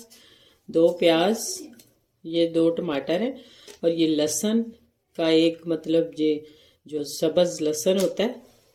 2 प्याज, ये 2 टमाटर हैं, और ये लहसुन का एक मतलब ये जो सब्ज़ लहसुन होता है,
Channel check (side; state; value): both; identical; correlation 1.00